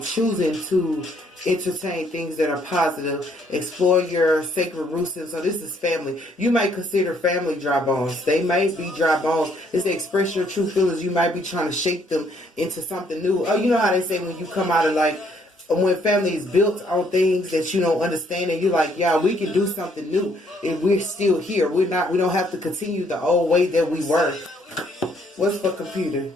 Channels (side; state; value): both; normal; correlation 0.67